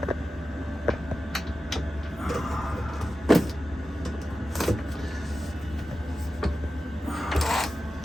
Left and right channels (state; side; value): normal; both; correlation 0.93